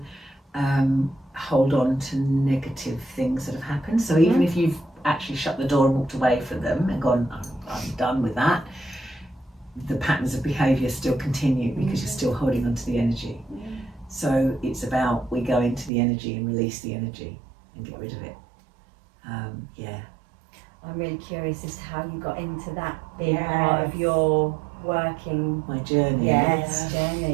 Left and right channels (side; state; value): left; drops out; at 15.9 s